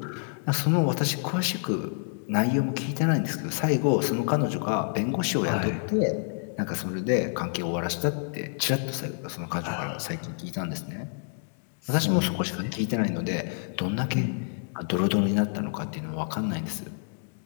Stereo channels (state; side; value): silent; right; 59 dB below the other